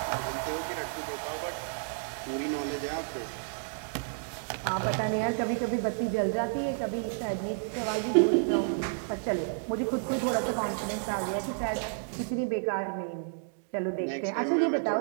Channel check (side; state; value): left; silent; digital silence